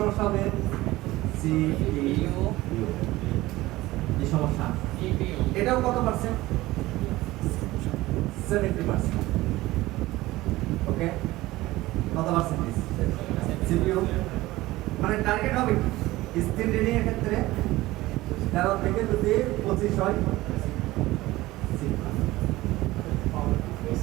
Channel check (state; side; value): quieter; left; 18.1 dB